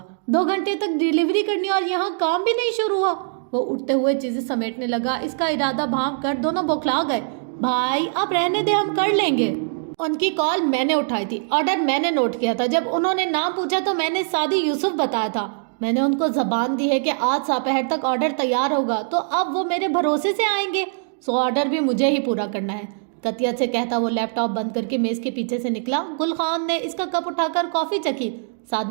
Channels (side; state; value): left; silent; digital silence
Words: 2 گھنٹے تک ڈیلیوری کرنی اور یہاں کام بھی نہیں شروع ہوا۔ وہ اٹھتے ہوئے چیزیں سمیٹنے لگا، اس کا ارادہ بھانپ کر دونوں بوکھلا گئے۔ بھائی آپ رہنے دے، ہم کر لیں گے۔ ان کی کال میں نے اٹھائی تھی، آرڈر میں نے نوٹ کیا تھا، جب انہوں نے نام پوچھا تو میں نے سعدی یوسف بتایا تھا۔ میں نے ان کو زبان دی ہے کہ آج دوپہر تک آرڈر تیار ہوگا، تو اب وہ میرے بھروسے سے آئیں گے، سو آرڈر بھی مجھے ہی پورا کرنا ہے۔ قطعیت سے کہتا وہ لیپ ٹاپ بند کر کے میز کے پیچھے سے نکلا۔ گل خان نے اس کا کپ اٹھا کر کافی چکھی۔